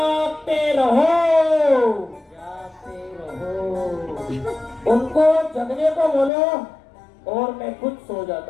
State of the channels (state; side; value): drops out; right; at 6.3 s